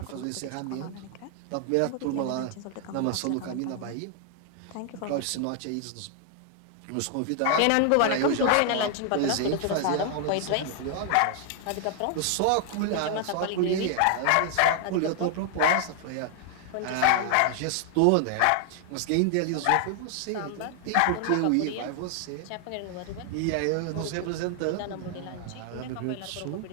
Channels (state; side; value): different; both; correlation 0.00